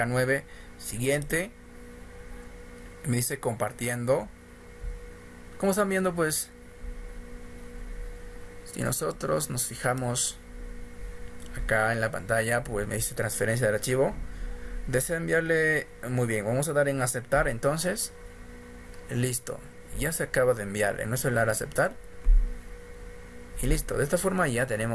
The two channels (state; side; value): identical; both; correlation 1.00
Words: Siguiente. Me dice compartiendo. Como están viendo, pues si nosotros nos fijamos acá en la pantalla, pues me dice transferencia del archivo. Desea enviarle. Muy bien, vamos a dar en aceptar. Entonces, listo, ya se acaba de enviar en nuestro celular aceptar. Y listo, de esta forma ya